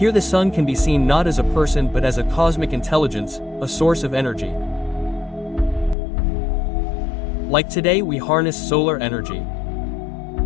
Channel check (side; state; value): right; drops out; at 6.0 s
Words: the sun can be seen not as a person but as a cosmic intelligence, a source of energy. Like today we harness solar energy.